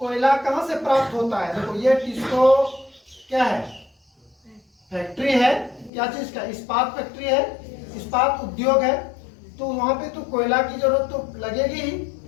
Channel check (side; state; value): right; drops out; at 5.9 s